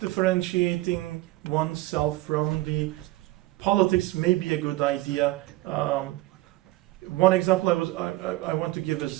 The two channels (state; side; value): quieter; left; 18.9 dB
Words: oneself from the politics may be a good idea. One example I want to give is